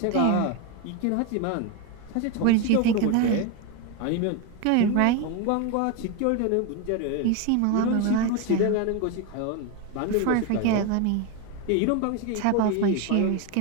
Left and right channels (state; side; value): different; both; correlation 0.02